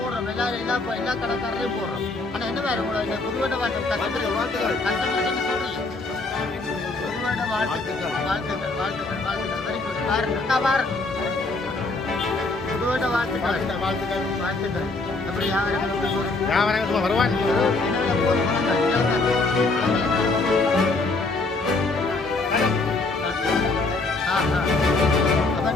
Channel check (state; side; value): quieter; right; 3.4 dB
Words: எல்லா கடைக்காரரையும் போடுறோம். ஆனால் என்ன வேறு உங்களோட இந்த புதுவண்ட வாழ்த்துக்கள் கஸ்டமருக்கு என்ன சொல்கிறீங்க? புதுவண்ட வாழ்த்துக்கள் வாழ்த்துக்கள் வாழ்த்துக்கள் வாழ்த்துக்கள். Very good. பாருங்க பாருங்க புதுவண்ட வாழ்த்துக்கள் வாழ்த்துக்கள் வாழ்த்துக்கள். எப்படி வியாபாரங்கள் வருவாங்க